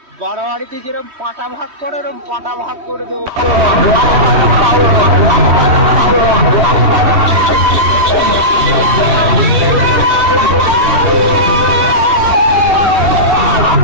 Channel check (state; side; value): late; left; 3.1 ms